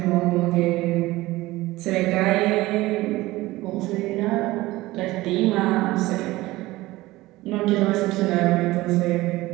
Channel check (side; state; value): left; quieter; 18.6 dB